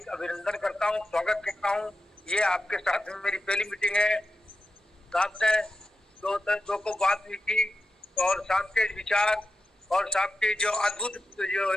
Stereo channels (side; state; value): both; normal; correlation 0.90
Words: अभिनंदन करता हूँ, स्वागत करता हूँ। ये आपके साथ में मेरी पहली मीटिंग है। आपसे दो को बात हुई थी और साहब के विचार और साहब की जो अद्भुत जो